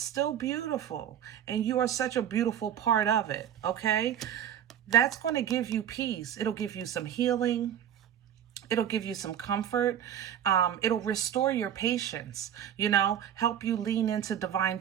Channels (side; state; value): left; quieter; 10.0 dB